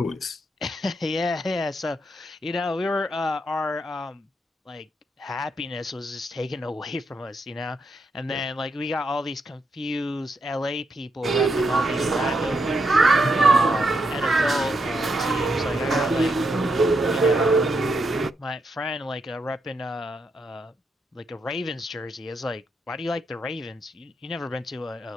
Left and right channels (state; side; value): normal; both; correlation 0.80